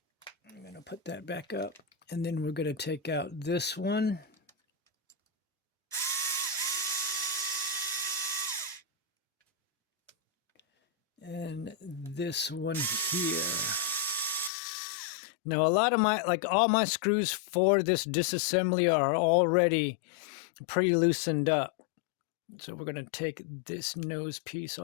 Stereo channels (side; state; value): right; drops out; at 14.5 s